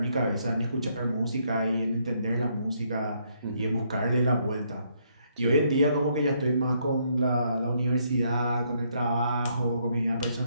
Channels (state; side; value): inverted; both; correlation -0.72